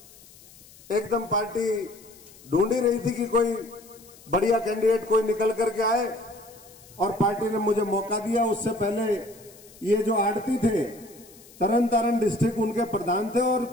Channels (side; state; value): left; noise; hiss, 23 dB below the sound